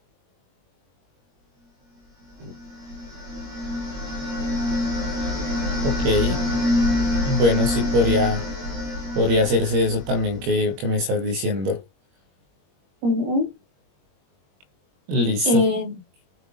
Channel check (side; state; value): left; late; 21 ms